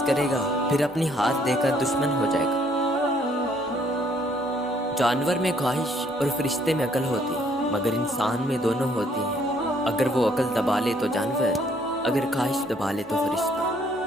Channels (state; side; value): normal; both; correlation 0.65